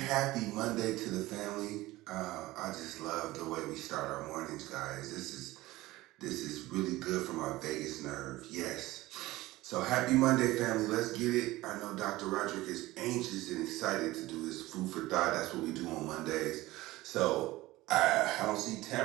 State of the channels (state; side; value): quieter; left; 18.4 dB